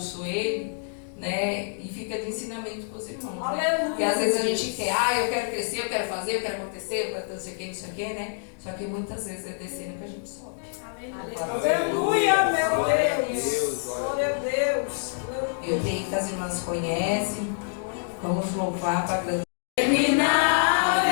ele, né, e fica de ensinamento para os irmãos, né? Porque às vezes a gente quer, eu quero crescer, eu quero fazer, eu quero acontecer, eu quero não sei o que, né? Só que muitas vezes é descendo que a gente sobe. Aleluia, meu Deus. Glória a Deus. Eu tenho que as irmãs conhecem. Vamos louvar para agradecer.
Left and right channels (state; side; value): silent; right; digital silence